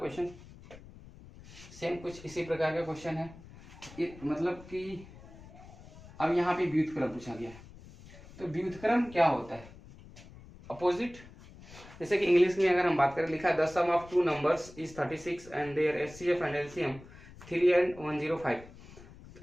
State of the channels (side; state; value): left; noise; rumble, 19 dB below the sound